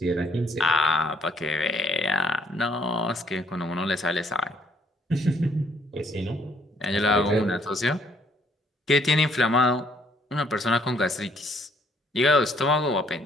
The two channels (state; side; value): normal; both; correlation 0.65